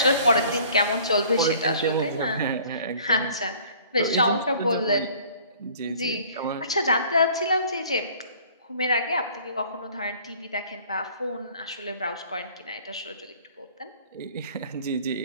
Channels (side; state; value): both; inverted; correlation -0.52